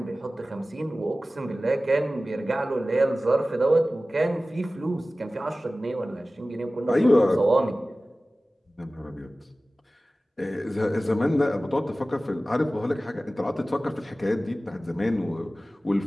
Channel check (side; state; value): both; normal; correlation 0.97